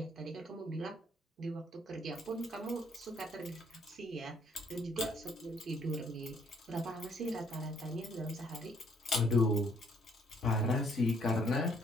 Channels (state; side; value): normal; both; correlation 0.66